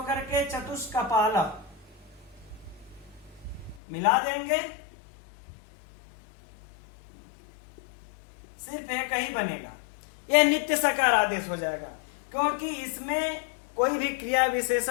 के चतुष्कपाल मिला देंगे, सिर्फ एक ही बनेगा, यह नित्य सकार आदेश हो जाएगा, क्योंकि इसमें कोई भी क्रिया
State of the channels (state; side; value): drops out; right; at 3.8 s